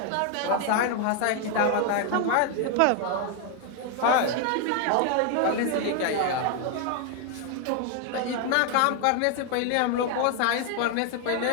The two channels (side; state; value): both; different; correlation 0.00